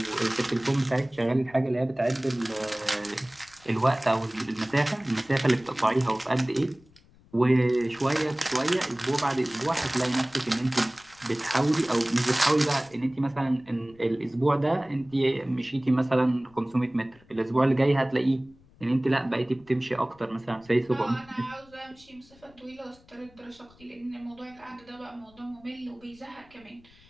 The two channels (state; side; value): noise; left; rumble, 27 dB below the sound